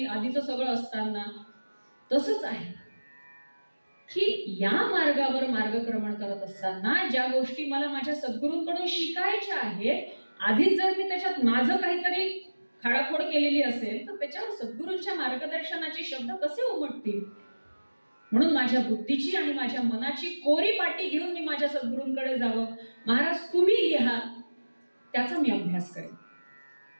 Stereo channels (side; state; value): both; inverted; correlation -1.00